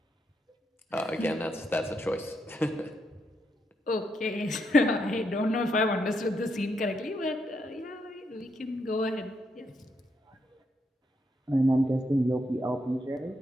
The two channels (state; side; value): normal; both; correlation 0.79